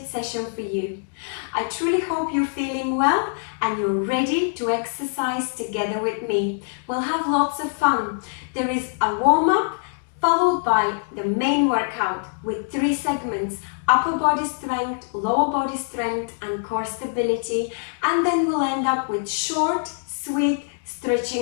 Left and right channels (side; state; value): right; silent; digital silence